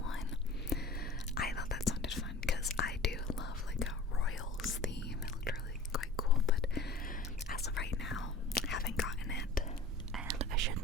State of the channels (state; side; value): quieter; right; 3.0 dB